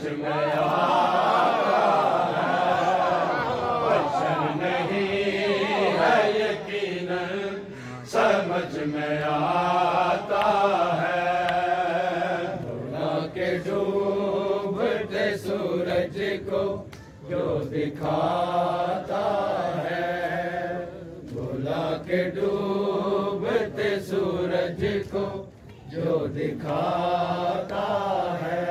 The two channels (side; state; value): both; identical; correlation 1.00